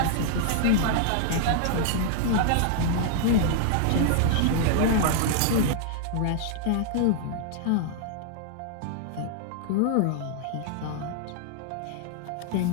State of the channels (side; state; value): both; different; correlation -0.01